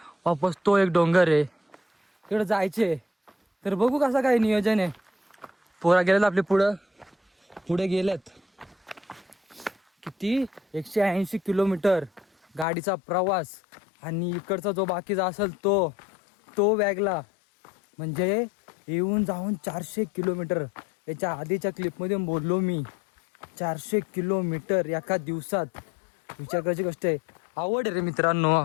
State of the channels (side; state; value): right; drops out; at 12.7 s